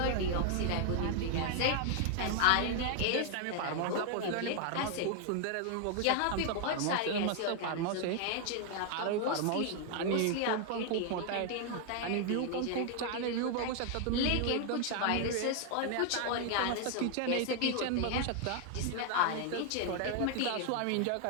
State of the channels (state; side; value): different; both; correlation 0.00